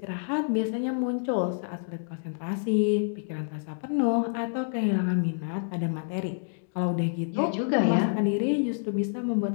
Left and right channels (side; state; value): right; silent; digital silence